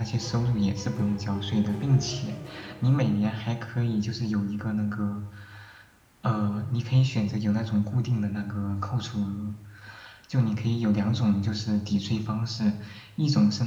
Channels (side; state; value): both; identical; correlation 1.00